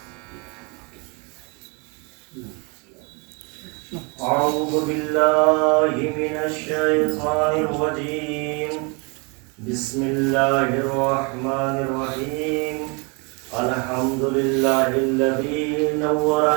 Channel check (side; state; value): left; quieter; 31.8 dB